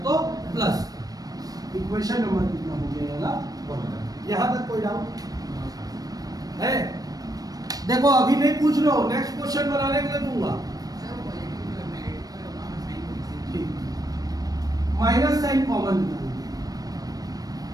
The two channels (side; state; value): left; late; 0.18 ms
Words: तो प्लस का। इक्वेशन नंबर कितना हो गया? 1। यहाँ तक कोई डाउट है? देखो अभी नहीं पूछ रहे हो, नेक्स्ट क्वेश्चन बनाने के लिए दूंगा। ठीक, माइनस साइन कॉमन निकालेंगे।